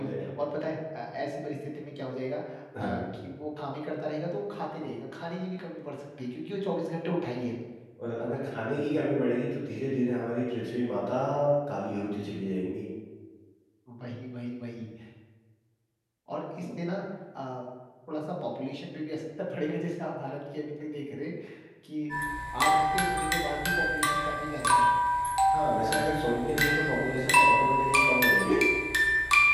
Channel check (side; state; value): both; identical; correlation 1.00